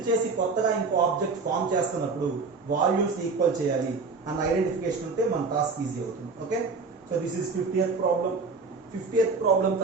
చేసి కొత్తగా ఇంకో ఆబ్జెక్ట్ ఫామ్ చేస్తున్నప్పుడు వాల్యూమ్స్ ఈక్వల్ చేయాలి అన్న ఐడెంటిఫికేషన్ ఉంటే మన టాస్క్ ఈజీ అవుతుంది. Okay, so this is 50th problem. 50th problem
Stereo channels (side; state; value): left; quieter; 4.3 dB